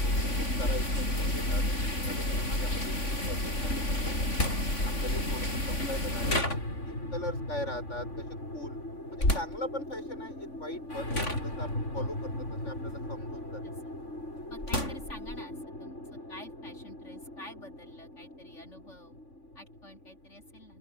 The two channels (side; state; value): right; late; 3.5 ms